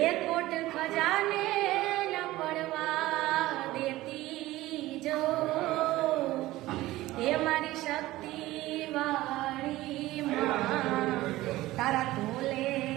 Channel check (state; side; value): quieter; left; 17.2 dB